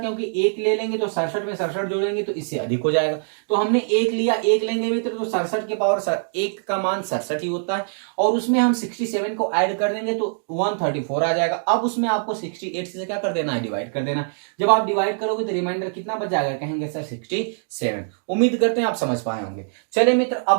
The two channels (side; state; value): left; silent; digital silence